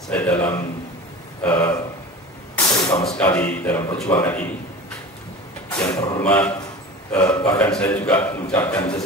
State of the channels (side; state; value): both; normal; correlation 0.35